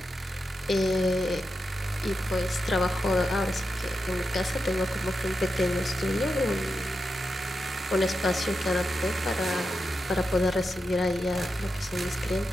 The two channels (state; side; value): normal; both; correlation 0.88